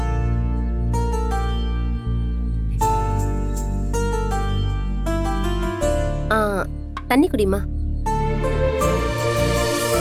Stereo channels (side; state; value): both; identical; correlation 1.00